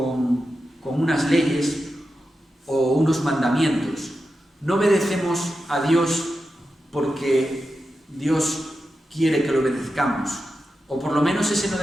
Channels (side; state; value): both; normal; correlation 0.90